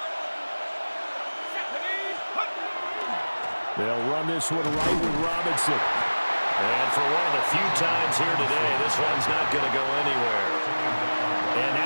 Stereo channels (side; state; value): both; inverted; correlation -1.00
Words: They'll run this one right with Robinson. And for one of the few times here today, this one's not going to go anywhere. And